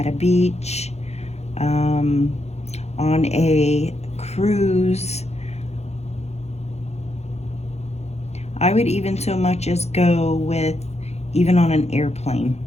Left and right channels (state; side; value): late; right; 0.31 ms